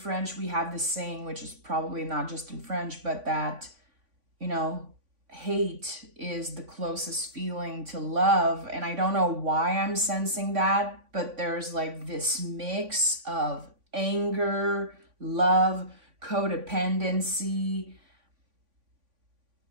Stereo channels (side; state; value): left; late; 3.5 ms